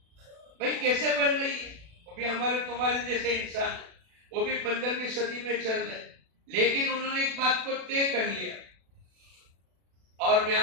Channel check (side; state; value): left; late; 36 ms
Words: بھائی کیسے بن رہی ہے؟ وہ بھی ہمارے تمہارے جیسے انسان ہے, وہ بھی 15ویں صدی میں چل رہے, لیکن انہوں نے ایک بات کو طے کر لیا. اور میں